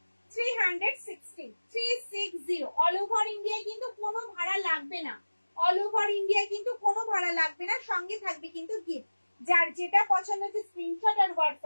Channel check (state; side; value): inverted; both; correlation -1.00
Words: 360 360 অল ওভার ইন্ডিয়ায় কিন্তু কোনো ভাড়া লাগবে না, অল ওভার ইন্ডিয়ায় কিন্তু কোনো ভাড়া লাগবে না। সঙ্গে থাকবে কিন্তু গিফট, যার যেটা পছন্দ হচ্ছে স্ক্রিনশট আর